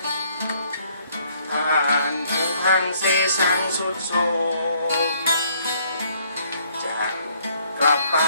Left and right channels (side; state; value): both; inverted; correlation -0.65